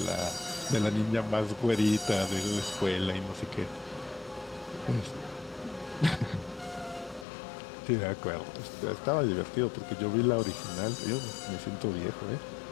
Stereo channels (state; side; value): drops out; right; at 7.2 s